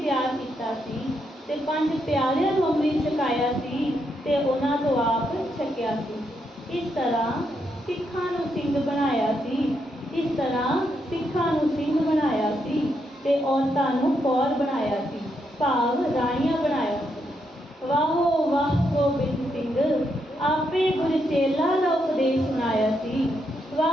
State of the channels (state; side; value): normal; both; correlation 0.80